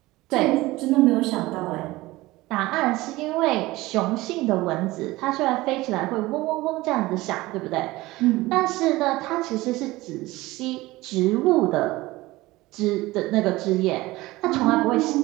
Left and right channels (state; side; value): quieter; left; 19.3 dB